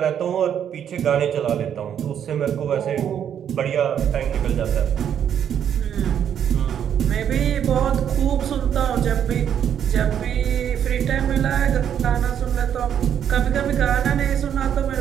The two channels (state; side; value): quieter; left; 9.1 dB